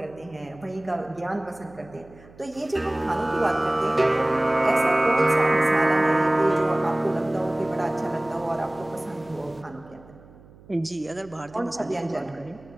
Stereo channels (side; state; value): right; noise; hum, 23 dB below the sound